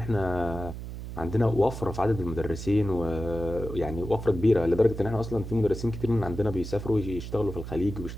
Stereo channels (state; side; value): noise; right; hum, 9 dB below the sound